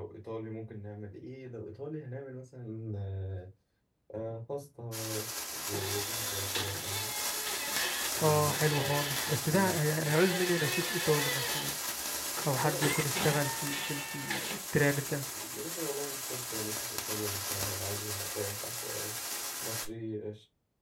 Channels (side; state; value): both; identical; correlation 1.00